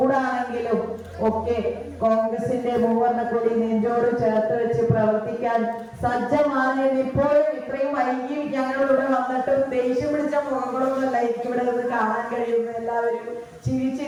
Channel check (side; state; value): both; identical; correlation 1.00